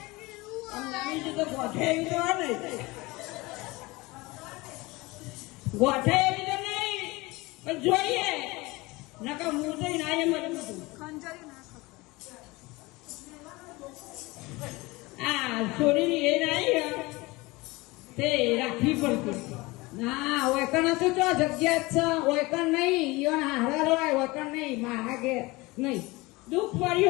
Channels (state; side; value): quieter; right; 22.6 dB